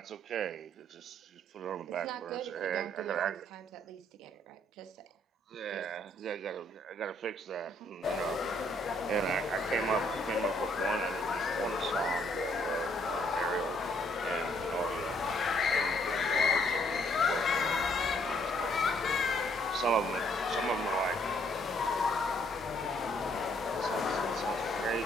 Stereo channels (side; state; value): both; normal; correlation 0.67